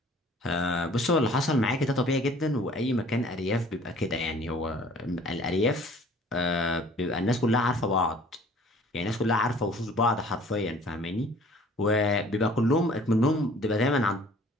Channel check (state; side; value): normal; both; correlation 0.52